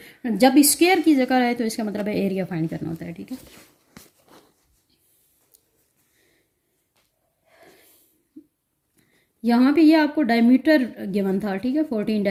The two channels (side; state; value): both; identical; correlation 1.00